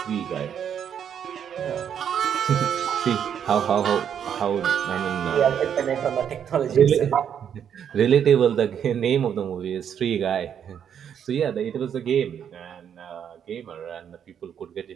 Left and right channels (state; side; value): quieter; left; 8.5 dB